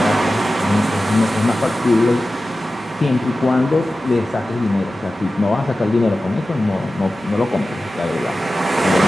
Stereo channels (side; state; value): both; normal; correlation 0.94